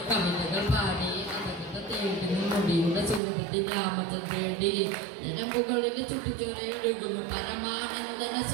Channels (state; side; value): drops out; left; at 3.2 s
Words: കവിതകൾ പാടി അതൊക്കെ തേടി മുടിയുടെ സുഗന്ധത്തിൽ രാമചന്ദ്രൻ തേടി നിലമ്പുകളിൽ ചുട്ടിച്ചൊരയൊഴുകുന്നു പരമാനന്ദന